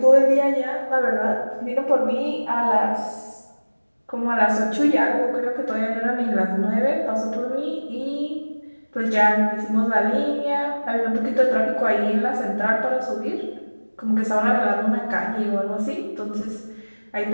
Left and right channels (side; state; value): both; inverted; correlation -1.00